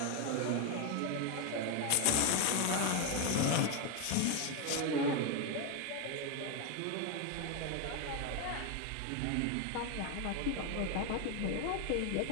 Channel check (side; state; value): both; different; correlation 0.01